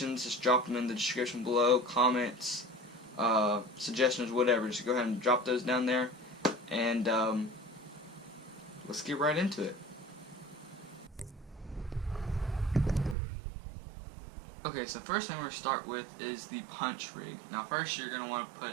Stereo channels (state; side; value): drops out; left; at 13.2 s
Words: just drop them in the description below, comments, suggestions, whatever. Just go ahead and drop those down there, and let's get right into it. Okay, so first thing we're going to start with is the punch rig. Now first you're going to want to